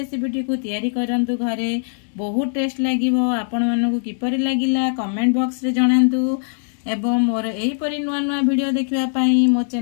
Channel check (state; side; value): silent; right; digital silence